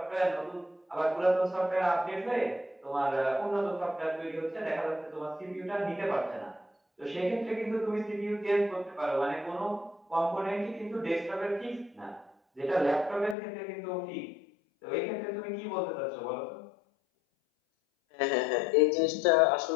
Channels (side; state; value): right; drops out; at 13.4 s